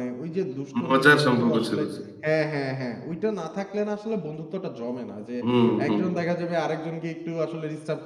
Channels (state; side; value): identical; both; correlation 1.00